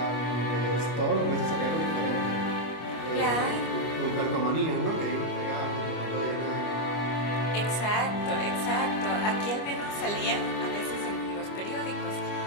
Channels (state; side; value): late; right; 25 ms